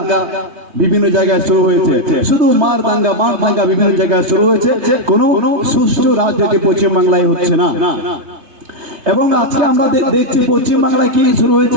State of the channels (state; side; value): late; left; 3.2 ms